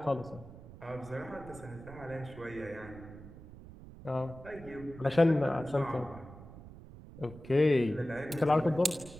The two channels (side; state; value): right; noise; rumble, 17 dB below the sound